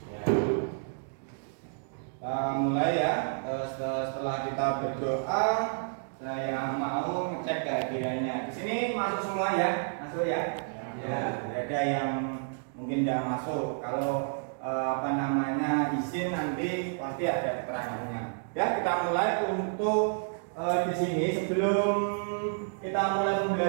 Ya. Mulai ya. Setelah kita berdoa, saya mau ngecek kehadirannya. Di sini masuk semua ya, masuk ya. Ya, ada yang mungkin tidak masuk. Kalau izin nanti pasti ada keterangannya. Ya, kita mulai untuk di sini sebelum kita mulai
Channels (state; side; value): silent; left; digital silence